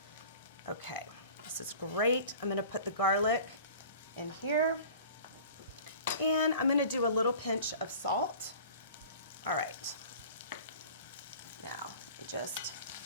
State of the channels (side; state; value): both; inverted; correlation -0.44